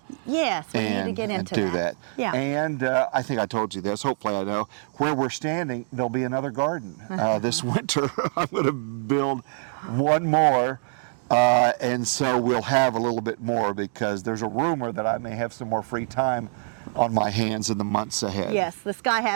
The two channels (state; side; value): silent; left; digital silence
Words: Yes, we need to get And into do that. Yeah. And I think I told you this, hopefully I know, where we're standing, there'll be another garden. This winter, I'm going to build one more, and so we'll have a little bit more, because there's a rumor that I may have some more free time on my hands in the months ahead. Yes, this guy